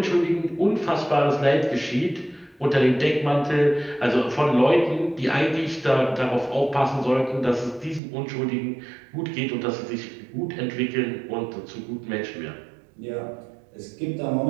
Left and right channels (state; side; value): drops out; left; at 8.0 s